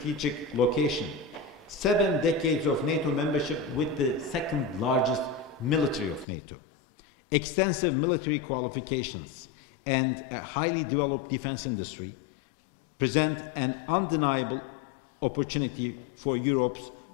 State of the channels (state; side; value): drops out; right; at 6.2 s